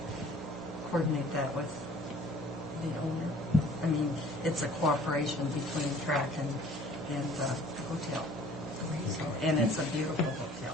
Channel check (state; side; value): normal; both; correlation 0.52